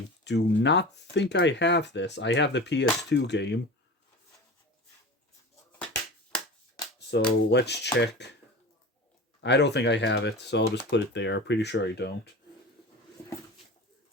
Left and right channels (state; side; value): normal; both; correlation 0.33